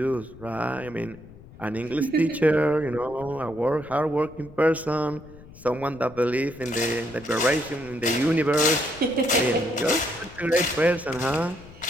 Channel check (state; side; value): noise; left; rumble, 20 dB below the sound